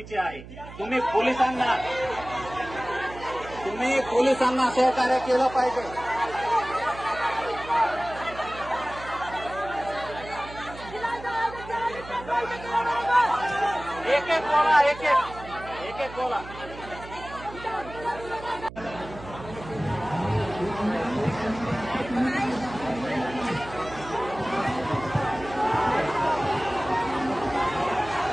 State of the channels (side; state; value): right; noise; hum, 15 dB below the sound